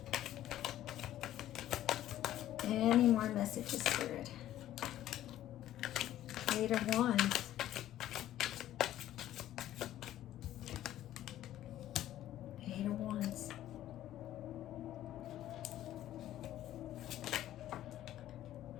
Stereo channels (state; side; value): quieter; right; 13.0 dB